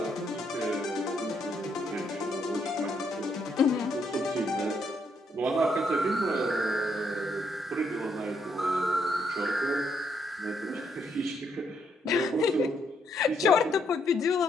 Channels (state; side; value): normal; both; correlation 0.74